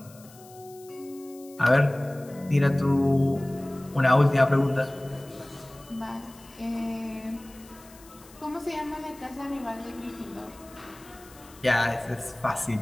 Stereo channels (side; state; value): left; noise; hiss, 23 dB below the sound